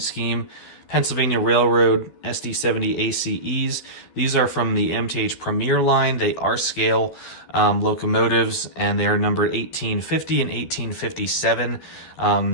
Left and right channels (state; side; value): late; right; 12 ms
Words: Scheme Pennsylvania Railroad SD70 ACEs. These are from the MTH Premier line. They are scale locomotives, and they are numbered 1850 and 1857.